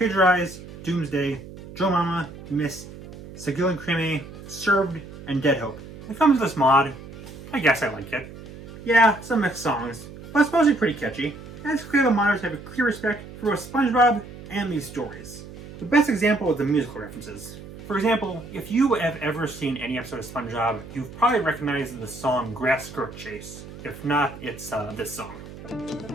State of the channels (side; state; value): right; noise; hum, 15 dB below the sound